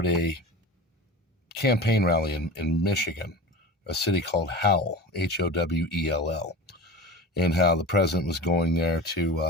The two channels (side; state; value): both; normal; correlation 0.31